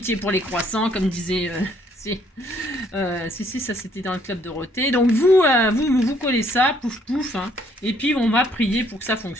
pour les croissants, comme disait... si, ça c'était dans le club de Dorothée. Donc vous collez ça, pouf pouf, hein, et puis on va prier pour que ça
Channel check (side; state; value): both; normal; correlation 0.65